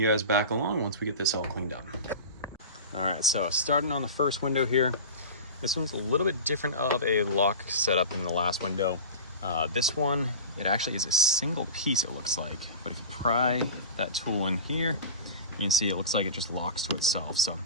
guys back along once we get this all cleaned up. All right, so starting on the first window here. This one's a little bit different of a lock setup than the last window. This one, it actually is a single piece, it looks like, but if you pry that tool in here, you can see it looks like it just locks to itself. So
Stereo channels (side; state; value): both; inverted; correlation -0.31